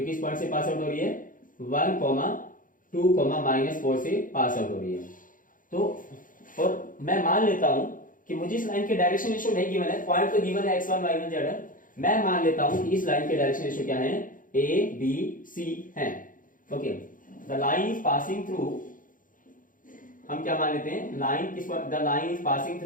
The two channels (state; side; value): late; right; 0.39 ms